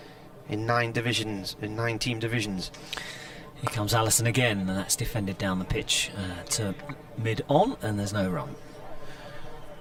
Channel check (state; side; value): identical; both; correlation 1.00